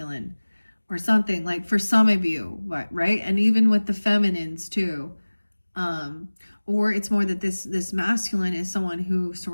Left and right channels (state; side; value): inverted; both; correlation -1.00